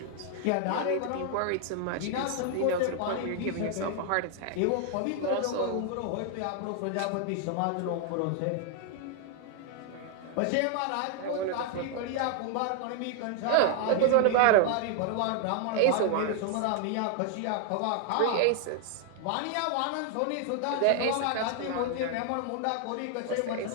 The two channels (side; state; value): both; different; correlation 0.00